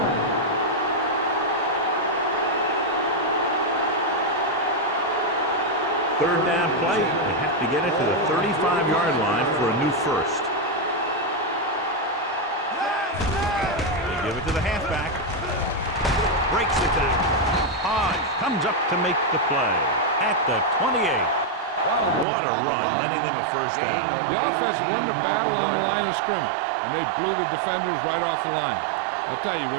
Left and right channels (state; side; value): drops out; left; at 22.2 s